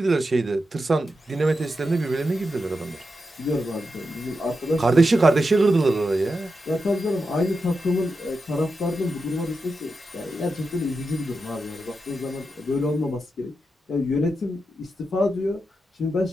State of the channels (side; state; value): both; normal; correlation 0.88